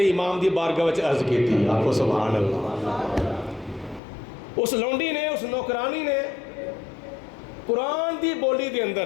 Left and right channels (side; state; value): right; drops out; at 4.0 s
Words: امام دی بارگاہ وچ عرض کیتی، آکھو سبحان اللہ۔ اس لونڈی نے، اس نوکرانی نے قرآن دی بولی دے